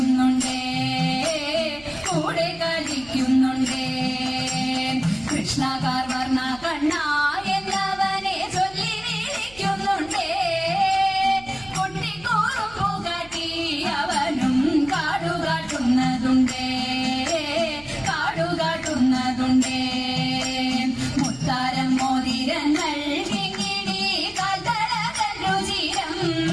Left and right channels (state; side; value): noise; right; hum, 22 dB below the sound